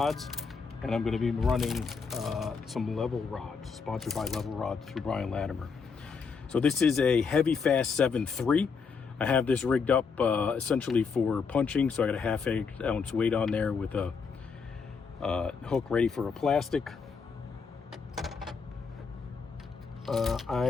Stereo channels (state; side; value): quieter; right; 5.4 dB